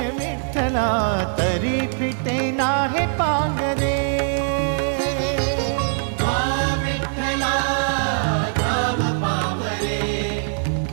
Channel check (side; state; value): left; silent; digital silence